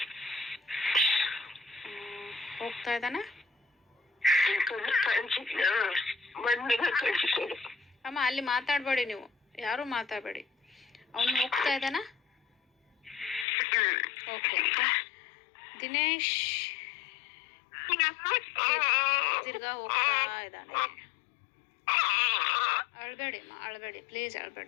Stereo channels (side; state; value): right; drops out; at 13.5 s